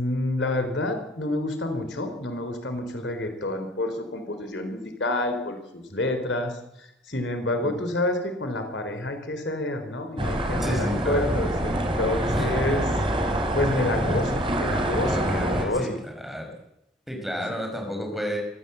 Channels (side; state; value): both; normal; correlation 0.50